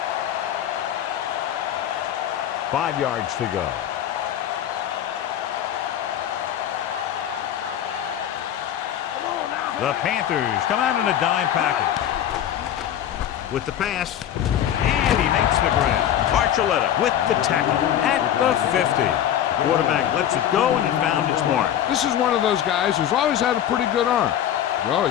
Five yards to go. The Panthers come out in a dime package. With the pass, and he makes the grab. Archuleta with the tackle at the 50. The quarterback lets it go, and it found its mark. This is one of those guys who's always had a pretty good arm. He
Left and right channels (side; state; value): right; quieter; 10.6 dB